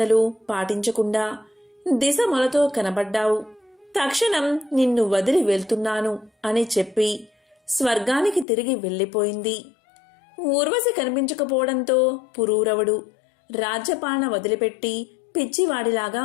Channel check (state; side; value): drops out; right; at 8.5 s